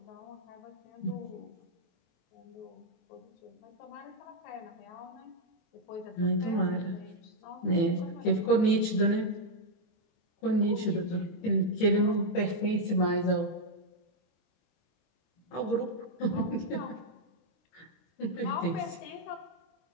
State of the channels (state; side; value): late; right; 23 ms